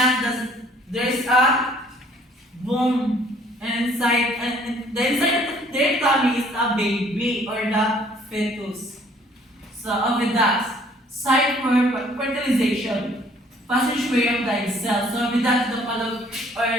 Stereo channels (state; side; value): normal; both; correlation 0.59